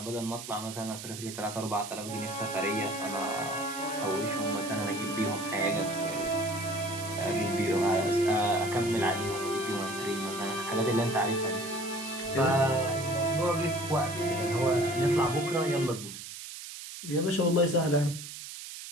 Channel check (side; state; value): right; noise; hiss, 11 dB below the sound